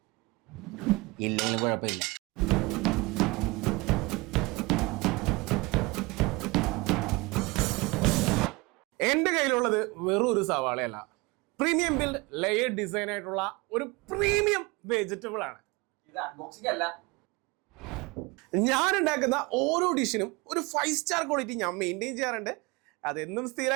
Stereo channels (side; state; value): left; quieter; 24.5 dB